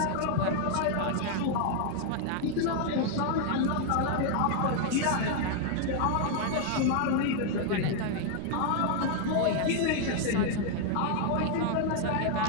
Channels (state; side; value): different; both; correlation 0.00